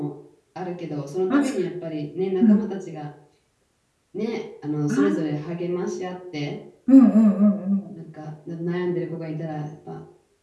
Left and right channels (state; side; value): identical; both; correlation 1.00